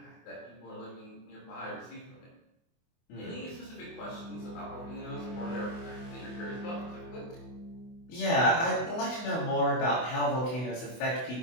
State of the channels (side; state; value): right; late; 24 ms